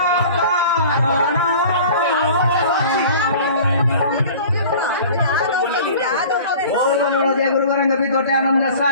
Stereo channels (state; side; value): inverted; both; correlation -0.43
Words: गुरु गोरंग विदोटे आनंद